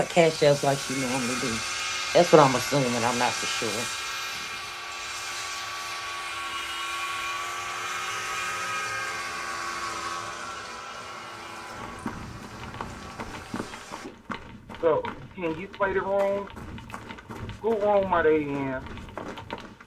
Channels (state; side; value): identical; both; correlation 1.00